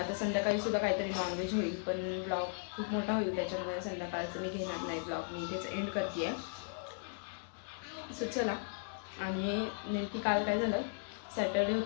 संध्याकाळी सुद्धा काहीतरी नॉनव्हेज होईल, पण ब्लॉग खूप मोठा होईल त्याच्यामुळे संध्याकाळचं मी घेणार नाही ब्लॉग. मी इथेच एंड करते आहे. सो चला. आणि नेमकी काल काय झालं, सॅटर्डे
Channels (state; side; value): silent; right; digital silence